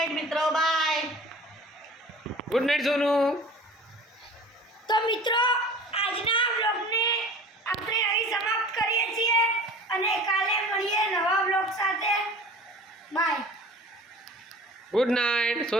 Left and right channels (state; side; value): normal; both; correlation 0.42